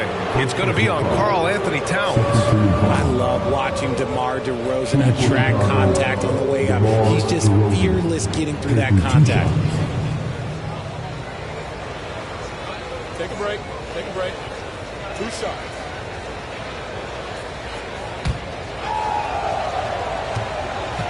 It's going to be on Karl Anthony Towns. I love watching DeMar DeRozan attract contact on the way up. He's just fearless getting through that contact. Take a break. Take a break. 2 shots.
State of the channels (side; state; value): both; identical; correlation 1.00